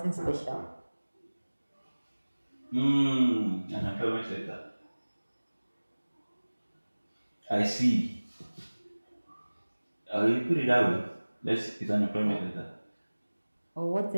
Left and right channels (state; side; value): inverted; both; correlation -1.00